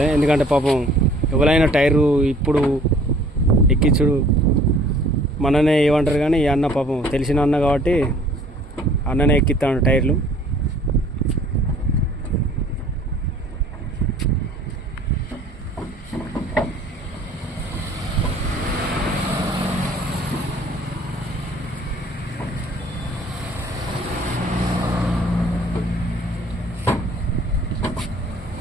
ఎందుకంటే పాపం ఎవరైనా టైరు ఇప్పుడు ఎక్కించుడు మననే ఏమంటారు, కానీ ఈ అన్న పాపం తెలిసిన అన్న కాబట్టి అన్ననే ఎక్కిస్తాడు టైర్లు.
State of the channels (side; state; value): both; normal; correlation 0.54